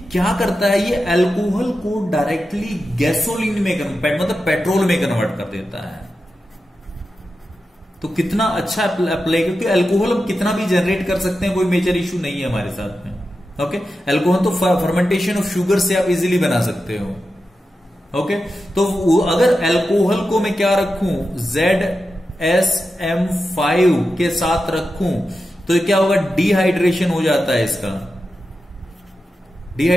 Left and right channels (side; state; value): both; normal; correlation 0.91